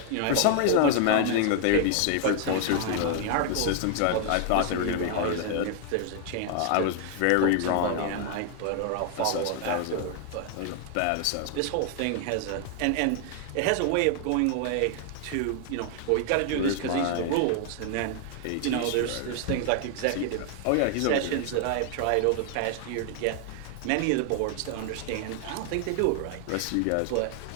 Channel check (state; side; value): different; both; correlation 0.00